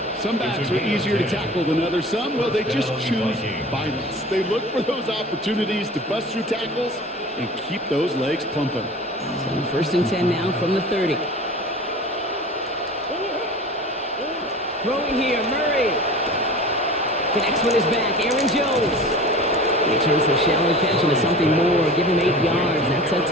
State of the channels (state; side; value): normal; both; correlation 0.39